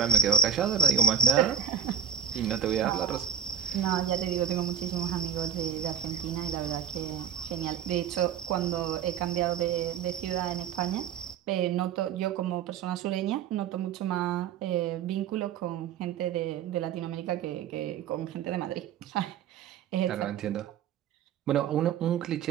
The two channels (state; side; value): quieter; left; 7.4 dB